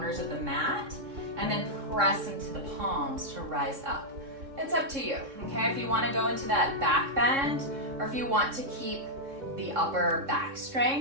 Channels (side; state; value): left; late; 3.6 ms